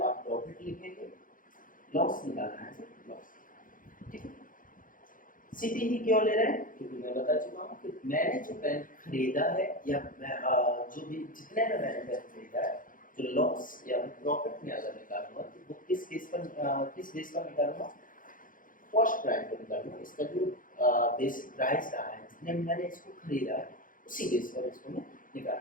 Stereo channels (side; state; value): right; late; 0.39 ms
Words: आप प्रॉफिट लिखेंगे, लॉस निकालना है तो लॉस, ठीक है। सीपी ही क्यों ले रहे हैं, क्योंकि मैं बता चुका हूँ कि मैंने जो पेन खरीदा है या मैं जो भी जितने में मैंने पेन खरीदा है, जो लॉस या प्रॉफिट में अगर निकालूंगा तो वो किस केस पर किस बेस पर निकालूंगा, कॉस्ट प्राइस पर निकालूंगा। इसका जो बेसिक प्राइस रहा है जितने में मैंने इसको खरीदा है उसी बेस पर इसको मैं